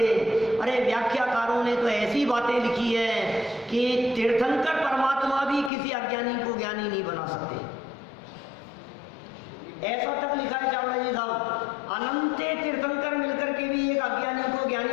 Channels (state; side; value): drops out; right; at 5.7 s